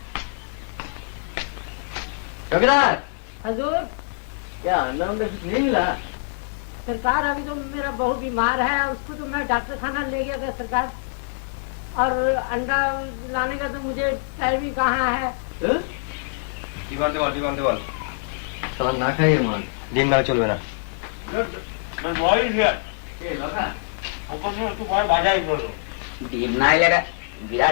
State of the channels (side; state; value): right; silent; digital silence